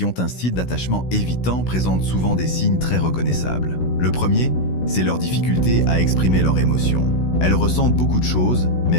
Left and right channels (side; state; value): right; late; 16 ms